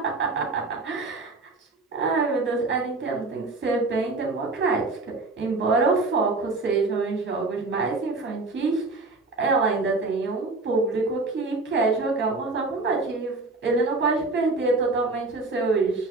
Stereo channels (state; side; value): quieter; left; 3.4 dB